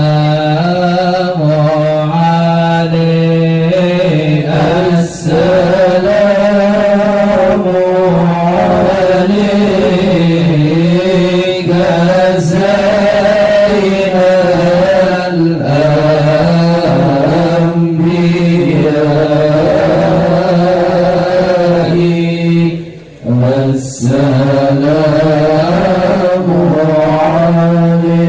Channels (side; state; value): both; identical; correlation 1.00